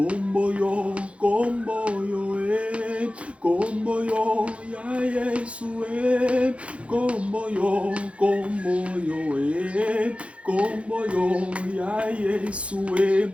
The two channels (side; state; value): left; late; 0.062 ms